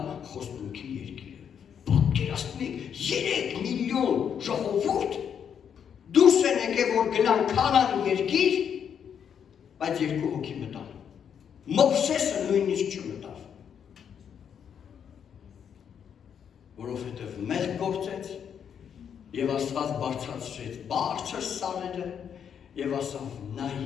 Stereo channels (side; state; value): right; quieter; 8.0 dB